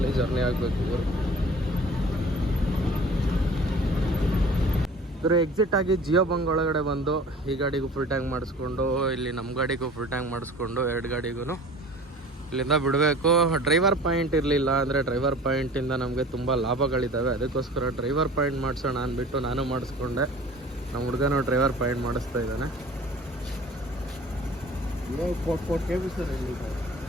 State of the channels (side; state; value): both; normal; correlation 0.44